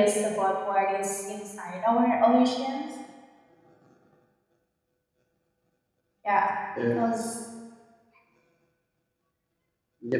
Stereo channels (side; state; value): both; identical; correlation 1.00